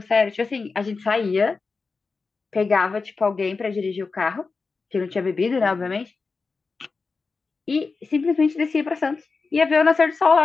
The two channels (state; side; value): quieter; right; 4.4 dB